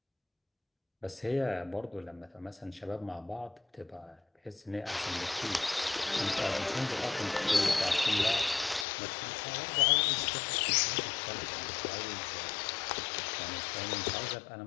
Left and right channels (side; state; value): right; drops out; at 8.8 s